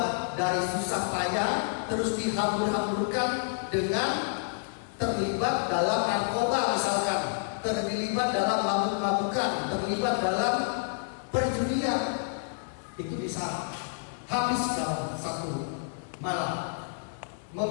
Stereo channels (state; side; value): silent; right; digital silence